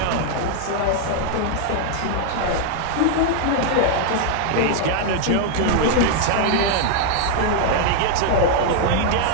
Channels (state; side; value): different; both; correlation 0.00